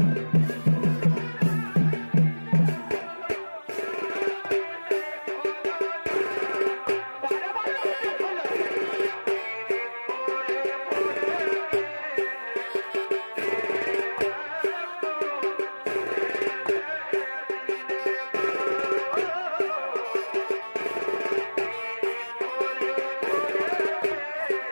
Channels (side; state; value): both; inverted; correlation -1.00